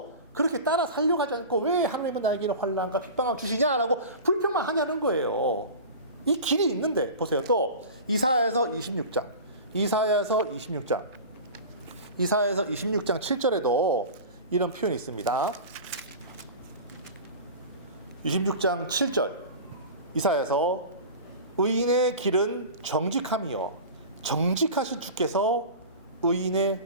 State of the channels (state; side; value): inverted; both; correlation -0.34